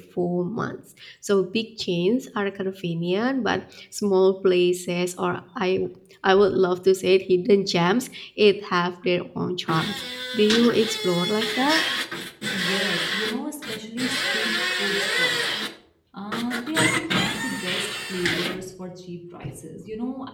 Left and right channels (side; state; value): both; identical; correlation 1.00